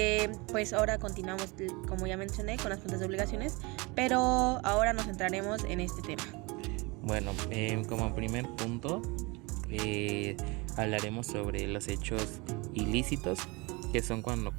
pues ahora continuamos, como ya mencioné, con las fuentes de obligaciones, pero ahora nos centraremos en este tema. Bueno, como primer punto, hablaremos sobre los hechos ilícitos, que son cuando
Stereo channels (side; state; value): left; quieter; 26.3 dB